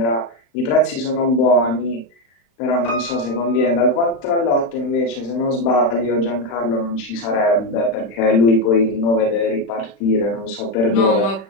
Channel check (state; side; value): late; right; 35 ms